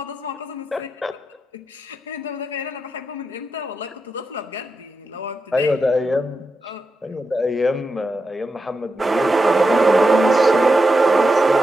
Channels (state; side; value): normal; both; correlation 0.88